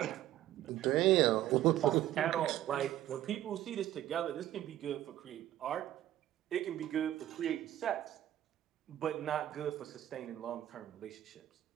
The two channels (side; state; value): left; quieter; 13.2 dB